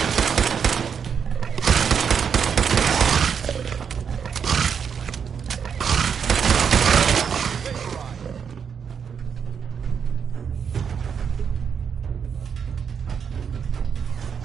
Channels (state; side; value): quieter; left; 7.0 dB